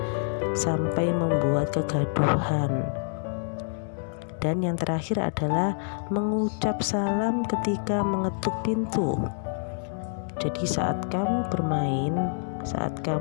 sampai membuat kegaduhan. Dan yang terakhir adalah mengucap salam ketika mengetuk pintu. Jadi saat kamu bermain, saat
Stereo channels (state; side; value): silent; right; 60 dB below the other